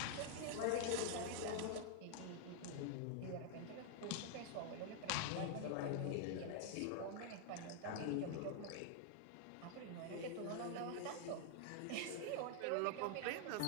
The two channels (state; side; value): different; both; correlation 0.00